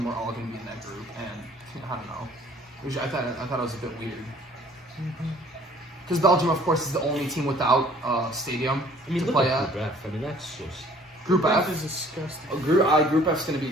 were all going to be in that group, and I don't know, which I thought it was a bit weird. Because Belgium, of course, is the only team without stadium I mean, to look play at at. Group F. I mean, that's just Group F. is disgusting. Group F is going to be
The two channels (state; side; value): normal; both; correlation 0.55